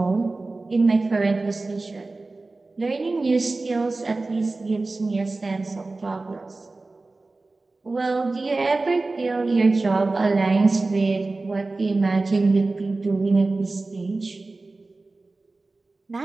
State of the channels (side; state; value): left; quieter; 3.4 dB